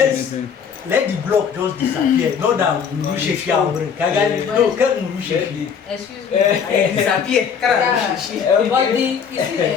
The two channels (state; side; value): quieter; right; 7.0 dB